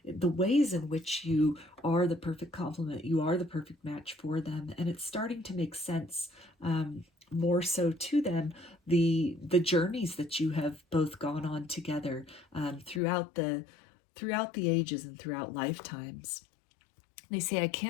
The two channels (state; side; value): drops out; right; at 13.0 s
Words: the ways in which you are the perfect complement, you are the perfect match for them, and it's starting to make sense, more so to them, the journeys that you have both gone on together, throughout the ages and throughout lifetimes. They say, I